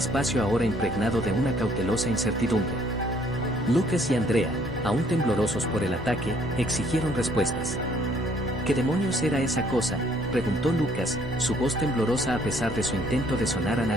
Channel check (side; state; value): both; normal; correlation 0.63